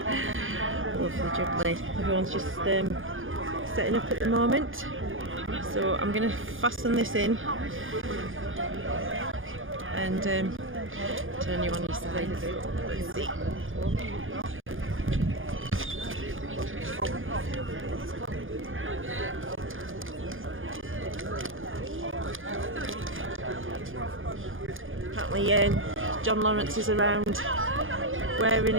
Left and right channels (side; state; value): left; late; 0.58 ms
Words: Lovely jubbly. Everyone's just setting up at the moment. So I'm going to fasten this in and turn you on your side. Let's see. Apparently John Lawrence is around wearing